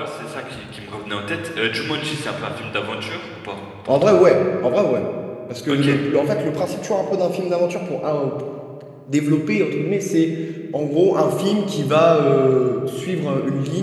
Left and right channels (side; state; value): both; identical; correlation 1.00